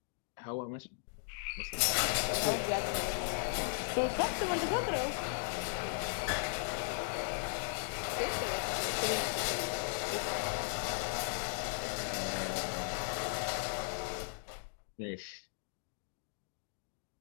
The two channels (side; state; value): right; silent; digital silence